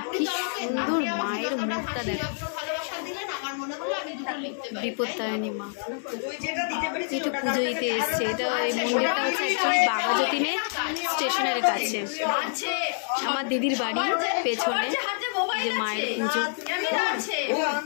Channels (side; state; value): right; silent; digital silence